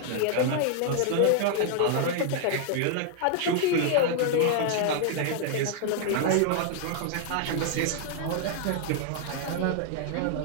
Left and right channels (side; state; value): both; different; correlation 0.00